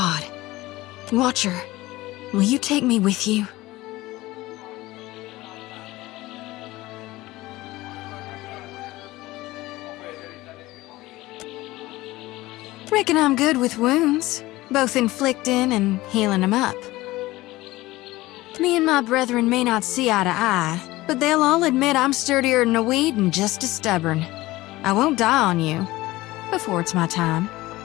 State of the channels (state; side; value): quieter; right; 18.6 dB